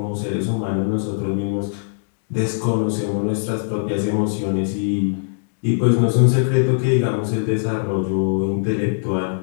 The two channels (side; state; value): right; silent; digital silence